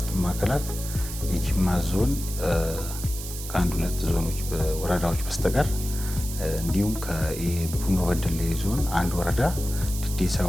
ማዕከላት የጅማ ዞን ከአንድ ሁለት ዞኖች ወረዳዎች በስተቀር እንዲሁም ከቡኖ በደሌ ዞን አንድ ወረዳ ዲዴሳ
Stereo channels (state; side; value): noise; right; hiss, 10 dB below the sound